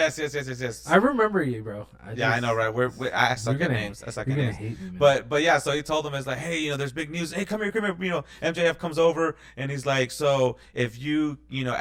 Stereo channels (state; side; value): identical; both; correlation 1.00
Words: I remember you, bro. I know, right? I suck at names. I suck at names. But yeah, so he told him, it's like, hey, you know, there's big news. Hey, come here. You know, MJF comes over and he's like, so if you know,